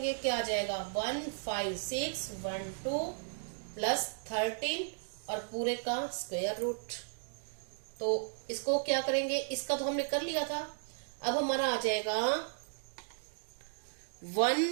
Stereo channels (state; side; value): silent; left; digital silence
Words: क्या आ जाएगा 15612 प्लस 13 और पूरे का स्क्वायर रूट। तो इसको क्या करेंगे, इसका तो हमने कर लिया था, अब हमारा आ जाएगा